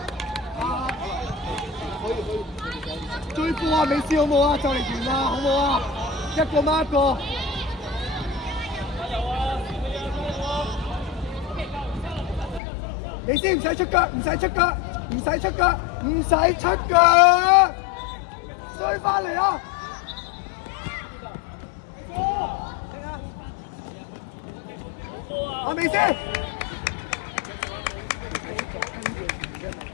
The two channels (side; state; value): right; drops out; at 12.6 s